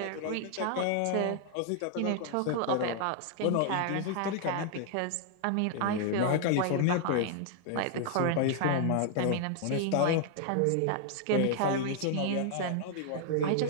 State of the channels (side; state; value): both; different; correlation 0.00